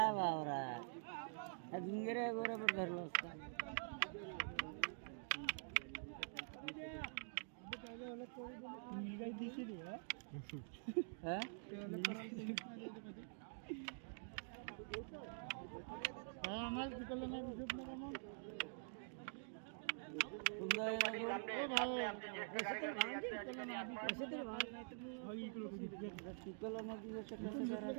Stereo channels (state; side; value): silent; left; digital silence